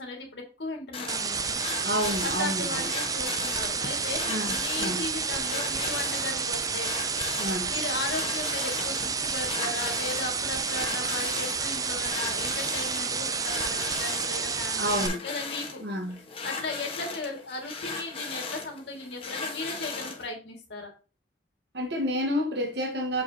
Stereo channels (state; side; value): normal; both; correlation 0.01